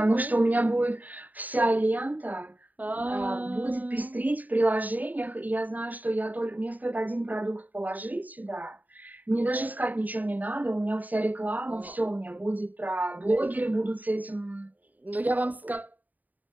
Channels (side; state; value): left; late; 0.081 ms